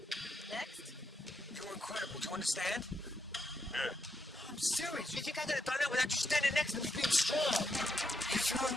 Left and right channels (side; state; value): both; normal; correlation 0.81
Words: Next. You're incredible. Do you understand? Yeah. I'm serious. You think I could have done that without you standing next to me being strong? Are you feeling